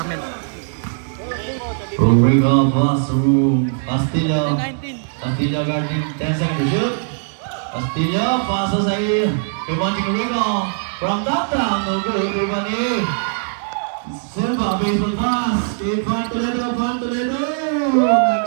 Rico pass through Castillo. Castillo guarding 10 seconds to shoot. Castillo passes kay Monching Rico from downtown. No good, everybody. Silva baseball pass. Kay Pan Toledo.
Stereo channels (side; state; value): left; silent; digital silence